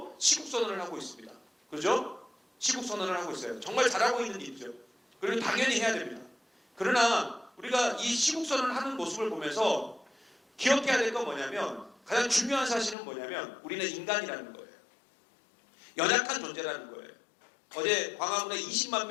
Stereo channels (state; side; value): drops out; right; at 13.0 s